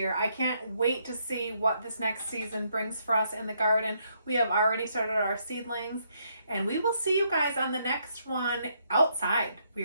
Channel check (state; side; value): inverted; both; correlation -0.74